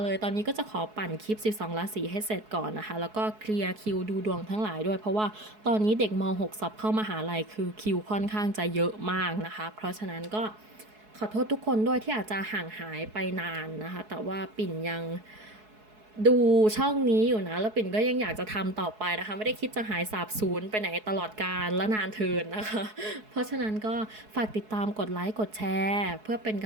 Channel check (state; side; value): late; left; 4.7 ms